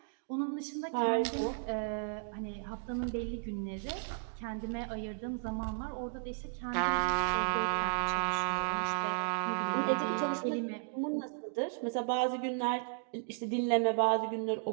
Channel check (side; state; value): left; silent; digital silence